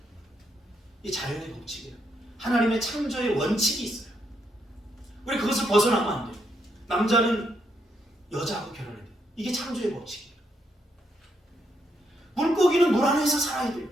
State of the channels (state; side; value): normal; both; correlation 0.77